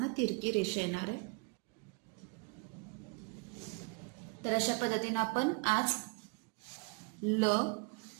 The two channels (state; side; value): quieter; left; 32.1 dB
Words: तिरकी रेषा येणार आहे. तर अशा पद्धतीने आपण आज ल,